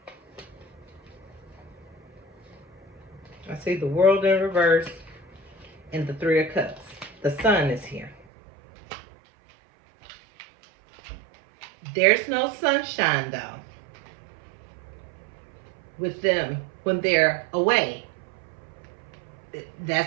I see the World in reverse and the Three of Cups. The Sun is here. There's no sunshine, though, with them when they're away.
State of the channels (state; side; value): drops out; left; at 8.2 s